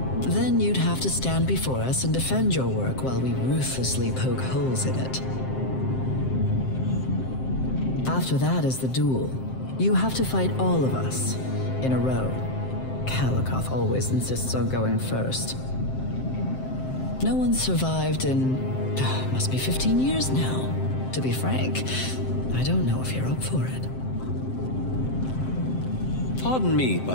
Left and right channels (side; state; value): right; late; 7.7 ms